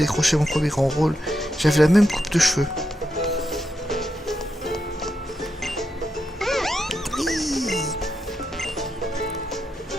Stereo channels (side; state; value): both; normal; correlation 0.84